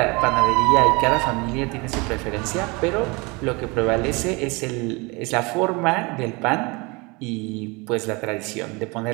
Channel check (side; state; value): left; quieter; 26.8 dB